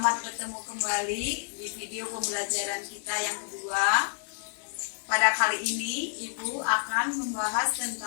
bertemu kembali di video pembelajaran kita yang kedua. Pada kali ini, Ibu akan membahas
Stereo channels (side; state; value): right; silent; 58 dB below the other